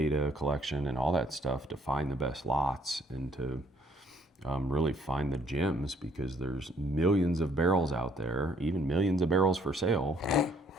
collection and all that stuff to find the best lots and to really find the gems, because there's millions of barrels out there, even millions of barrels for sale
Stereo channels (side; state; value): both; normal; correlation 0.65